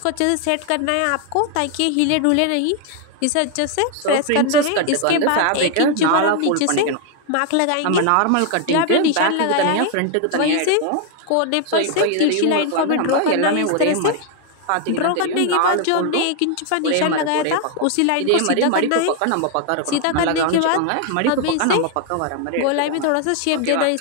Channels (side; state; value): both; different; correlation 0.00